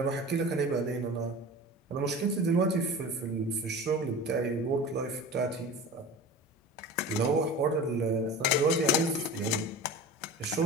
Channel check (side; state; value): both; normal; correlation 0.34